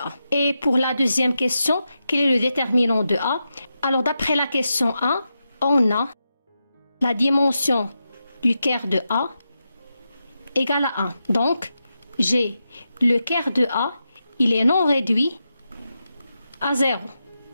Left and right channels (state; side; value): inverted; both; correlation -0.88